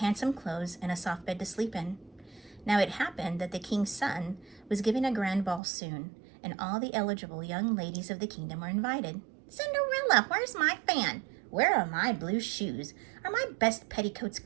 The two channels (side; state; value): left; drops out; at 5.6 s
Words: clothes and a soft bed to sleep in. Now it happened that the king's son was giving a grand ball soon, and all the eligible young ladies of the kingdom were invited. "Cinderella, where's my fan? Where are my blue shoes? Are my best petticoats